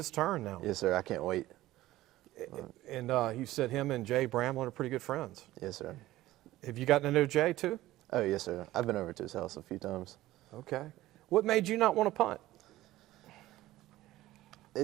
turn now. Yes, sir. I can't wait. And you said him and Jay Bramlett are pretty good friends. Yes, sir. Have you gotten to know Jay too? Oh, yes, sir. I've been over to his house a few times. Okay. What made you not want to punt?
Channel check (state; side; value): quieter; left; 16.0 dB